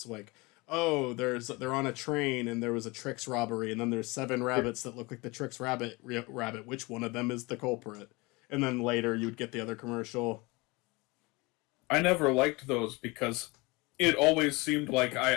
Like, oh, they're on a train and there was a Trix robbery and then there's 7 rabbits that look like the Trix rabbit. Which one of them is the culprit? And then later you would get the other commercial. I never liked those because it always seemed like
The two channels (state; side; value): quieter; right; 24.9 dB